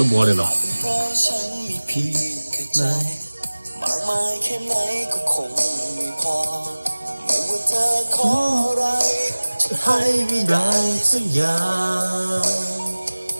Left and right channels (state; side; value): inverted; both; correlation -1.00